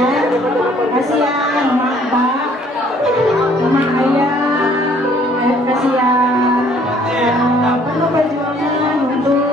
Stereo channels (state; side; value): normal; both; correlation 0.60